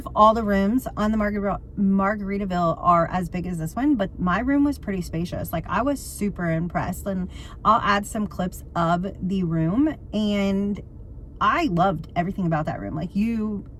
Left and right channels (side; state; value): both; identical; correlation 1.00